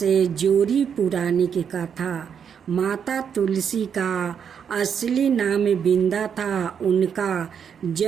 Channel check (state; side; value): quieter; left; 7.5 dB